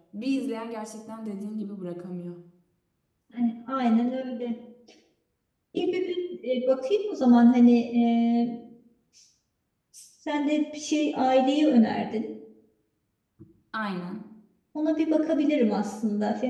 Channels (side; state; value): both; identical; correlation 1.00